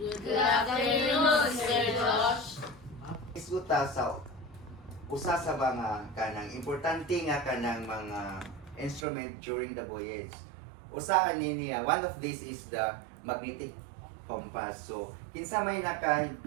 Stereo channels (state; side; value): drops out; left; at 9.1 s